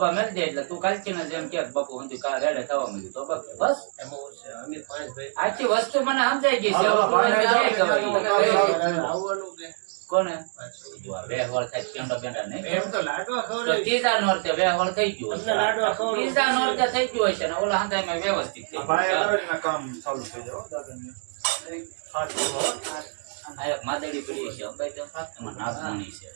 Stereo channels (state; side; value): silent; left; 61 dB below the other